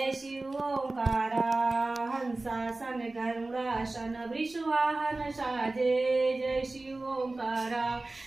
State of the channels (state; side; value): quieter; left; 3.1 dB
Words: शिव ओंकारा हंसासन गरुड़ासन वृषवाहन साजे जय शिव ओंकारा